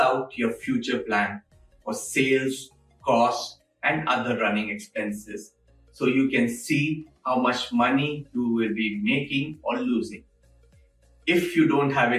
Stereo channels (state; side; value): identical; both; correlation 1.00